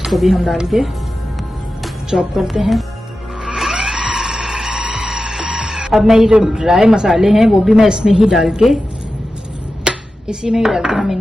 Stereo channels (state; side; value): normal; both; correlation 0.93